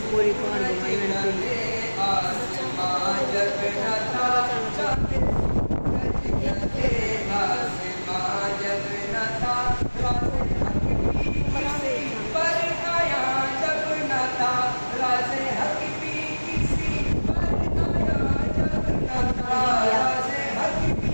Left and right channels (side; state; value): both; inverted; correlation -1.00